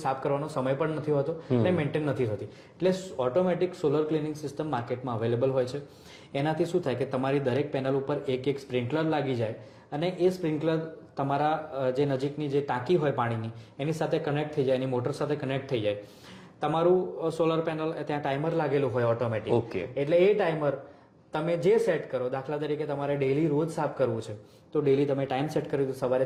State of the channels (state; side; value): identical; both; correlation 1.00